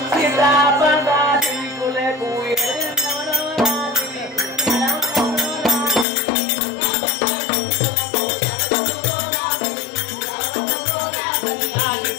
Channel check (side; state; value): right; drops out; at 6.1 s